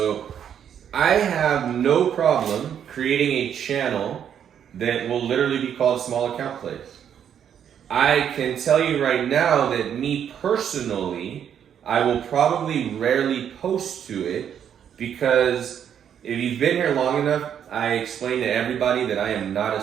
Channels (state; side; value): quieter; left; 8.9 dB